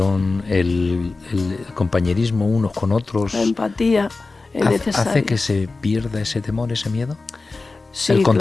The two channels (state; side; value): quieter; right; 3.7 dB